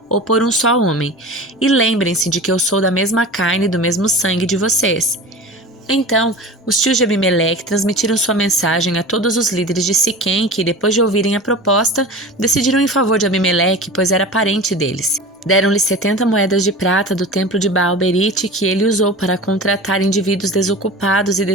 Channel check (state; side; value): normal; both; correlation 0.34